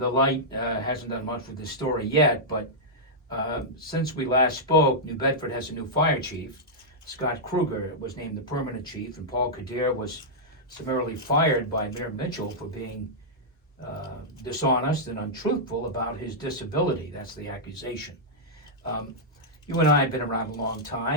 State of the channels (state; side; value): normal; both; correlation -0.09